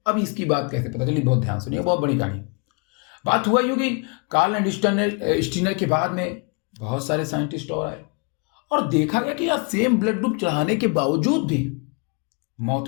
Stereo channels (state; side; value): quieter; right; 34.5 dB